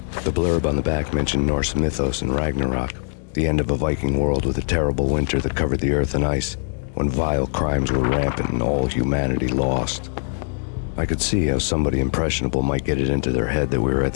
The blurb on the back mentioned Norse mythos and Ragnarok, the end of a Viking world with a terrible winter that covered the earth in ice, when vile crimes were rampant and all humanity lost. I could see how somebody impressionable might get it into their head that we were at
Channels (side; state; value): right; silent; digital silence